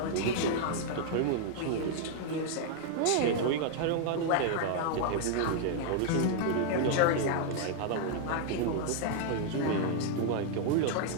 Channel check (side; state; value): both; different; correlation 0.00